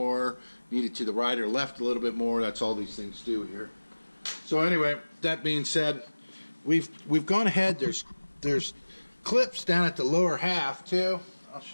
need it to the right or left a little bit more. That's all these things do here. So anyway, that being said, we've gone ahead. There's clips down at the lower half too. I'll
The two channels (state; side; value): inverted; both; correlation -1.00